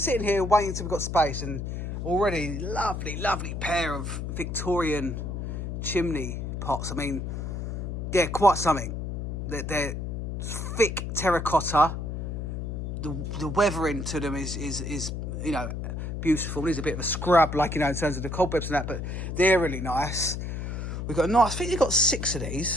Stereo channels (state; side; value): noise; left; hum, 4 dB below the sound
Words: here waiting until we've got space, and already lovely, lovely pair of Victorian chimney pots. I mean, yeah, quite something. They're thick terracotta. The weathering to them is beautiful. There's a bit of a scrub, in terms of the cobwebs and that, but they're really nice. We've got I think we've got 6 of